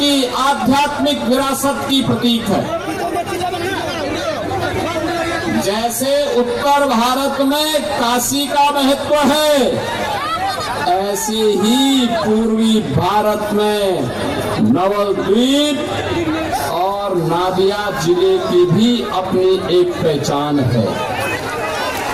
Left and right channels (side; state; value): right; noise; rumble, 26 dB below the sound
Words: आध्यात्मिक विरासत की प्रतीक है। जैसे उत्तर भारत में काशी का महत्व है, ऐसे ही पूर्वी भारत में नवद्वीप और नादिया जिले की भी अपनी एक पहचान है।